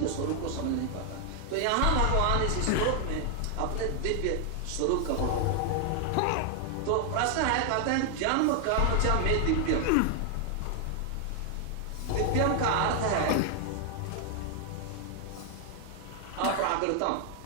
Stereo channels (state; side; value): different; both; correlation 0.00